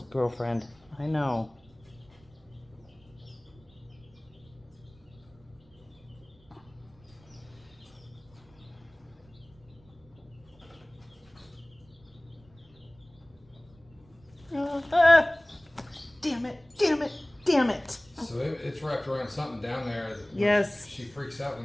girlfriend. I know. Damn it, damn it, damn it. So it's wrapped around something down there. That Yes. She freaks out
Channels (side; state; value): right; noise; rumble, 27 dB below the sound